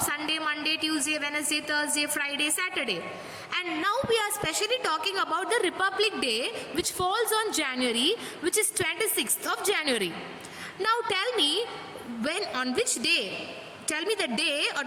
Monday, Tuesday, Wednesday, Thursday, Friday, Saturday. And now we are specially talking about the Republic Day, which falls on January, which is 26th of January. Now tell me, when, on which day? Tell me the day,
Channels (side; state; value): both; identical; correlation 1.00